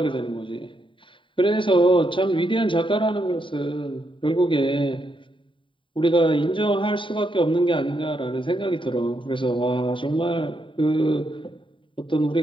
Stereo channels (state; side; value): late; right; 0.25 ms